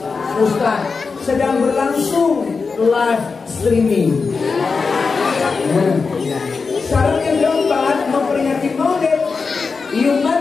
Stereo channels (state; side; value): quieter; right; 4.7 dB